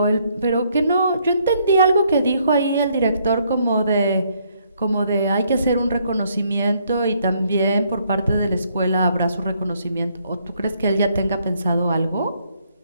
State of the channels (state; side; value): inverted; both; correlation -0.70